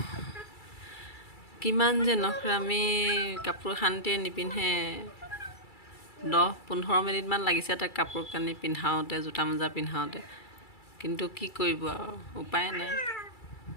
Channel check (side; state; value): right; late; 2.3 ms